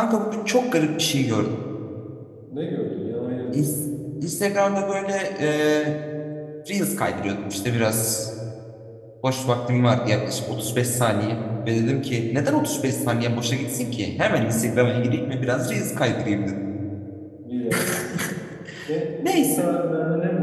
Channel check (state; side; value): identical; both; correlation 1.00